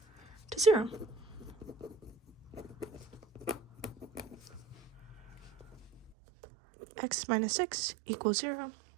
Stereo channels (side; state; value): left; drops out; at 6.2 s